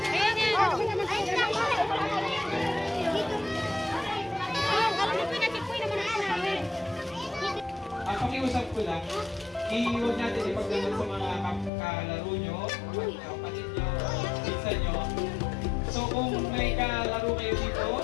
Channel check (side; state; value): right; drops out; at 11.7 s